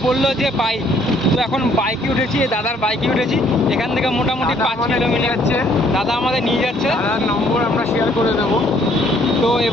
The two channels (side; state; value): both; normal; correlation 0.63